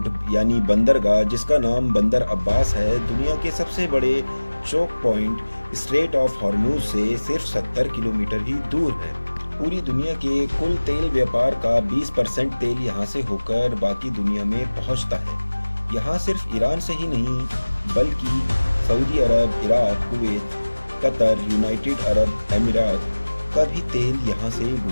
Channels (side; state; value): both; inverted; correlation -1.00